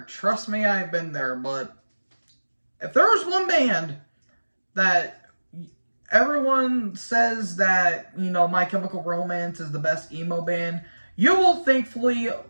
Trust me, I've been there. But if there was one band that everyone says that, My Chemical Romance is the best emo band, you will thankfully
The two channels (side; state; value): both; inverted; correlation -1.00